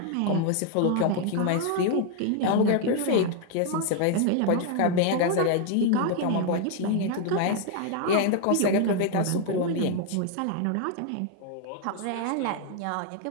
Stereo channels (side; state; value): both; different; correlation 0.00